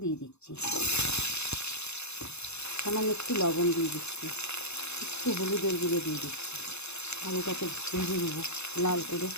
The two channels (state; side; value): late; right; 0.81 ms